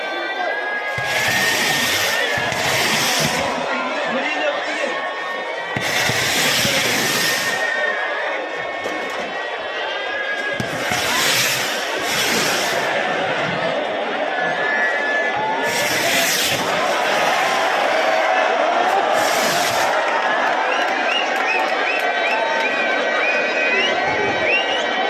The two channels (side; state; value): both; identical; correlation 1.00